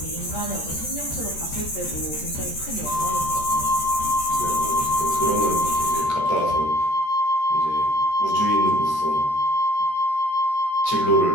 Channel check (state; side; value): late; right; 13 ms